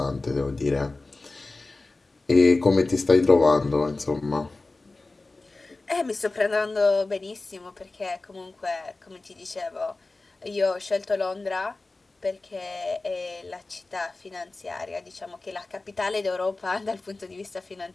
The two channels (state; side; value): quieter; right; 3.3 dB